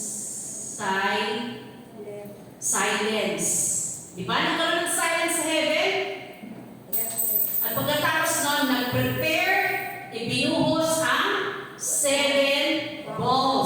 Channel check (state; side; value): identical; both; correlation 1.00